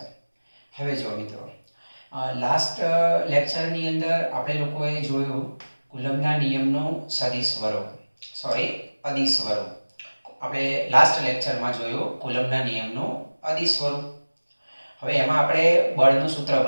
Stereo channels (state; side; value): inverted; both; correlation -1.00